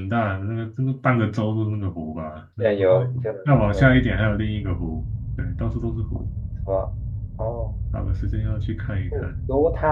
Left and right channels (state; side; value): identical; both; correlation 1.00